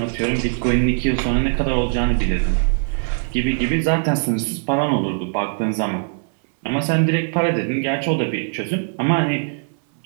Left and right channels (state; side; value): silent; left; 65 dB below the other